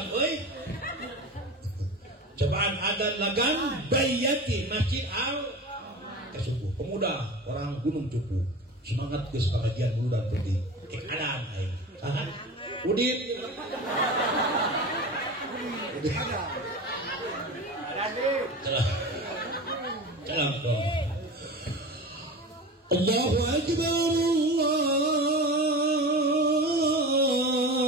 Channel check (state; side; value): normal; both; correlation 0.31